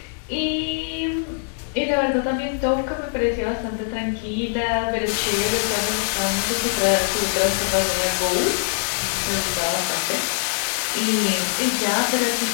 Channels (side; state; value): right; silent; digital silence